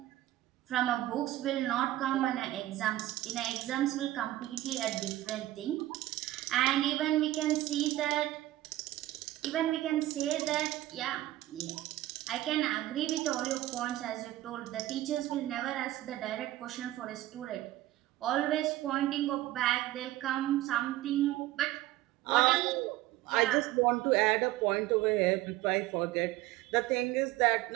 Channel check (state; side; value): quieter; left; 15.6 dB